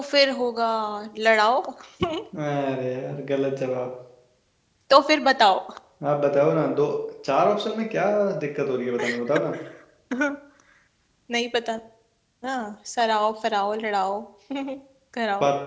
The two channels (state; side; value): identical; both; correlation 1.00